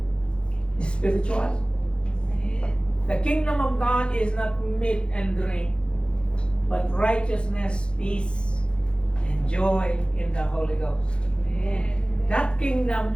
spiritual. The kingdom of God is not meat and drink, but righteousness, peace, and joy in the Holy Ghost. That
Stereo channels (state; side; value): late; right; 0.055 ms